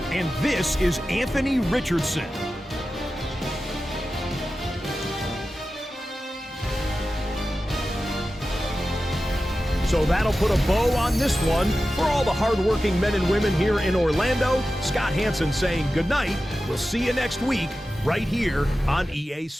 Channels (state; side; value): normal; both; correlation 0.93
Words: And this is Anthony Richardson. So that'll put a bow on this one. For all the hardworking men and women here in Orlando, Scott Hansen saying good night. We'll see you next week right here on EA